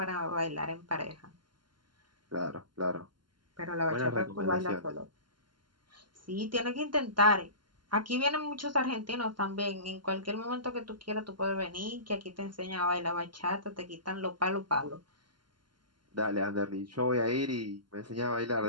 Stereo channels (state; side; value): late; left; 0.71 ms